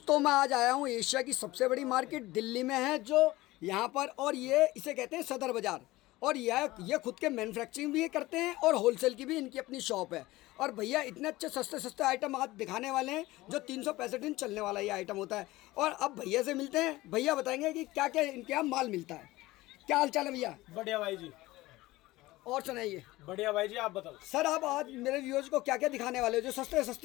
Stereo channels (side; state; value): right; quieter; 18.7 dB